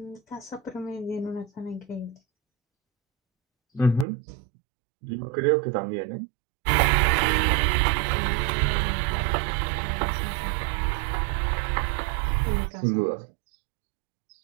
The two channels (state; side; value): drops out; left; at 4.0 s